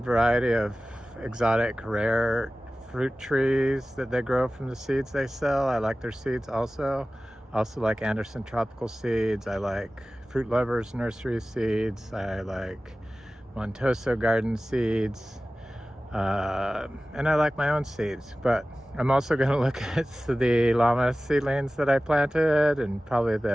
variety of exotic, rare fruit trees that they grow from the seeds they sell. I like their seeds also. I also like Anderson Tropical Seeds. I like Fruit Lovers Nursery Seeds. I like Montoso Garden Seeds. And I like my own seeds. But I'm also going to look at the Ilama seedlings that I planted, and probably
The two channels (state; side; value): normal; both; correlation 0.96